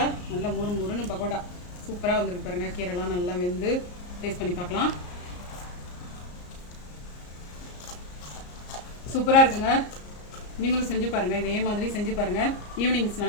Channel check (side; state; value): right; late; 34 ms